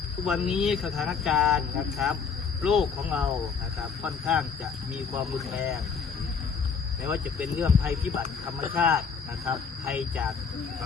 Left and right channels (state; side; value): quieter; right; 5.9 dB